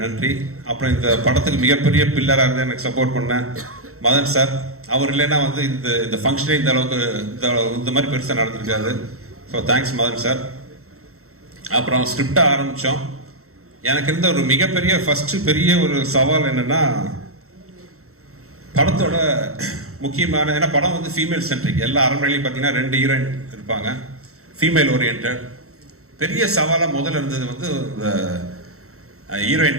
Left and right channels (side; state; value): left; late; 0.63 ms